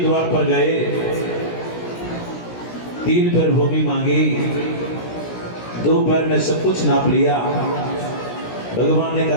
पर गए, 3 पैर भूमि मांगी, 2 पैर में सब कुछ नाप लिया। भगवान ने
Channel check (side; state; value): right; late; 17 ms